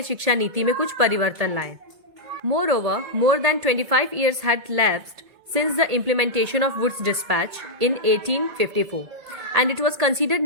शिक्षा नीति में कुछ परिवर्तन लाएं. Moreover, more than 25 years had lapsed since the implementation of Wood's Dispatch in 1854, and it was considered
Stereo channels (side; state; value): left; late; 1.9 ms